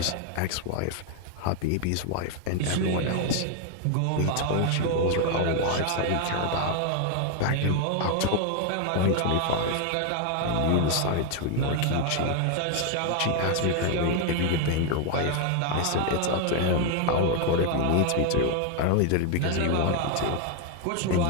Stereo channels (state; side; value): different; both; correlation 0.01